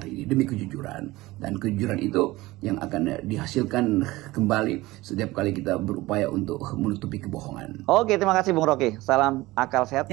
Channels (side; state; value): left; quieter; 19.3 dB